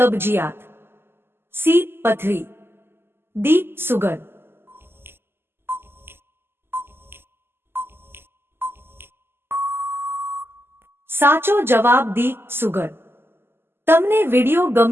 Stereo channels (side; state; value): left; late; 0.11 ms